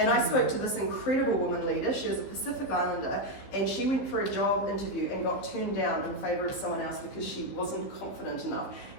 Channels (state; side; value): late; right; 15 ms